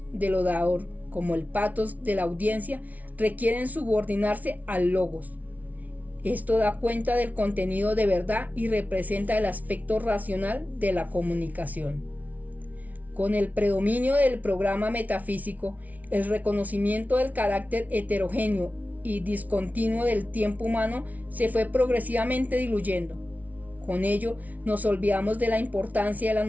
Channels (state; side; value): late; left; 0.073 ms